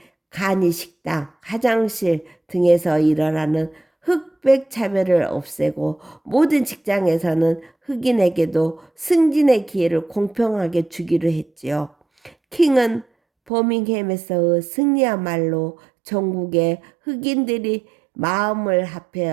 간이 식당, 화장실 등에서 일어나는 흑백 차별을 없애고 모든 직장에서는 흑인에게도 승진의 기회를 공평하게 주기로 했지요. 킹은 버밍햄에서의 승리야말로 전국의 흑인들이 마음을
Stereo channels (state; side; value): drops out; left; at 13.5 s